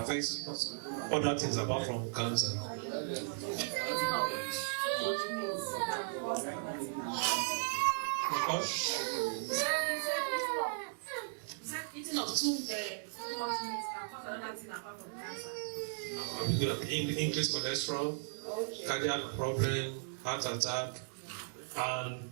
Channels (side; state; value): left; silent; digital silence